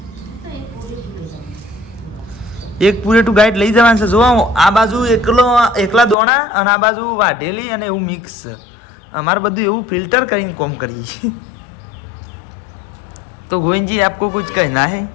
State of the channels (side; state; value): right; drops out; at 6.2 s